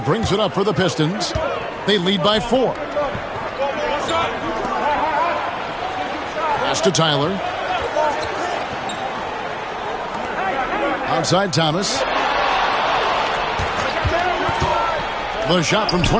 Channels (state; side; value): identical; both; correlation 1.00